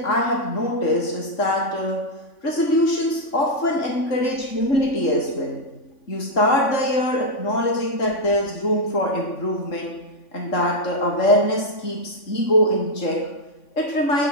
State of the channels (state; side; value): late; right; 3.5 ms